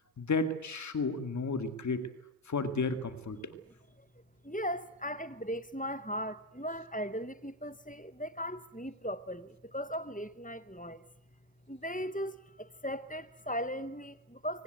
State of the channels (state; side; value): normal; both; correlation 0.11